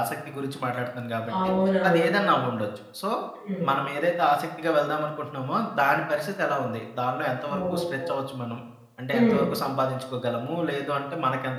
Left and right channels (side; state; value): both; identical; correlation 1.00